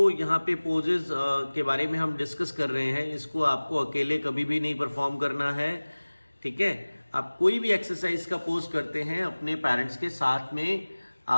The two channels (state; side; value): inverted; both; correlation -1.00